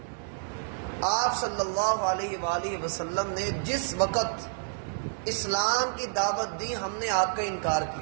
آپ صلی اللہ علیہ وآلہ وسلم نے جس وقت اسلام کی دعوت دی ہم نے آپ کا انکار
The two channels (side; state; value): left; silent; digital silence